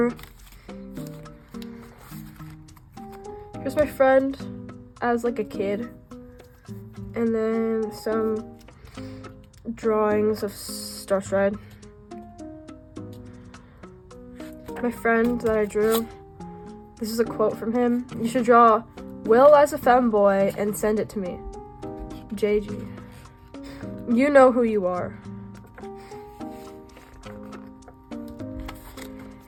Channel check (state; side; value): identical; both; correlation 1.00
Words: Here's my friend as like a kid, and then some drawings of Starstride. My friend that I drew, this is a quote from him: "You should draw Will as a femboy and send it to me. JG. You know who you are."